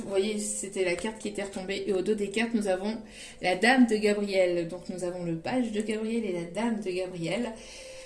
vous voyez, c'était la carte qui était retombée. Et au dos des cartes, nous avons la Dame de Gabriel. Donc, nous avons le page de Gabriel et la Dame de Gabriel.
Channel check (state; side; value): identical; both; correlation 1.00